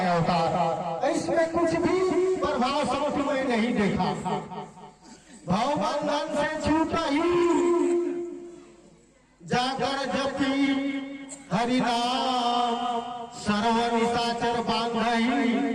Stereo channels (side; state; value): both; identical; correlation 1.00